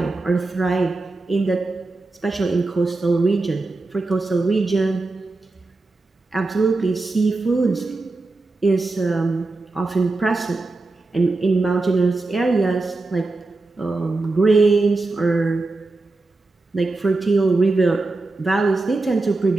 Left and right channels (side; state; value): left; quieter; 3.3 dB